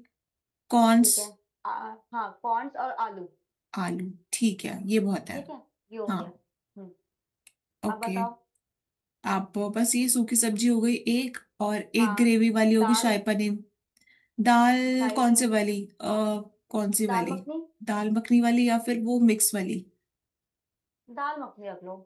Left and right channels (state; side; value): identical; both; correlation 1.00